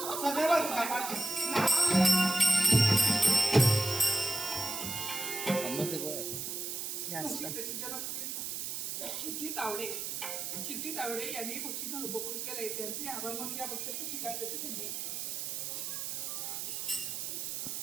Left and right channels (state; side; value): noise; right; hiss, 4 dB below the sound